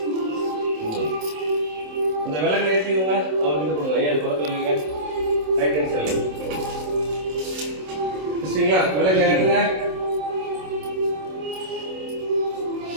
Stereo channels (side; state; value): left; late; 27 ms